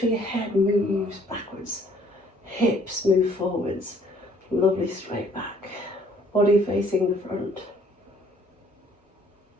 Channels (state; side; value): normal; both; correlation 0.61